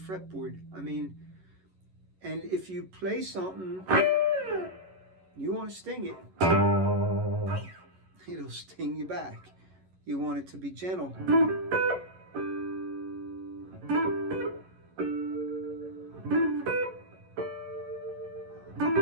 I mean, and if you play something, you want to sting it, it'll sting you back. You want it to be gentle.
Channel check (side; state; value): left; late; 11 ms